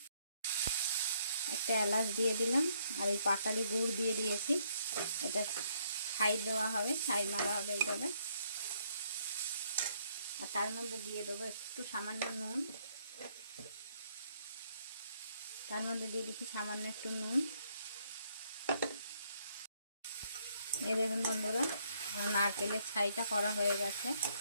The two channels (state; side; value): inverted; both; correlation -0.70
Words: একটা এলাচ দিয়ে দিলাম আর এই পাটালি গুড় দিয়ে দিয়েছি। এটা ছাই দেওয়া হবে, ছাই মারা হবে এইভাবে। আর তার মধ্যে দিয়ে দেবো একটু সামান্য নুন। তার মধ্যে দিয়ে দিচ্ছি সামান্য একটু নুন। এই দেখুন বন্ধুরা, নারকেলের ছাইটা করা হয়ে গেছে।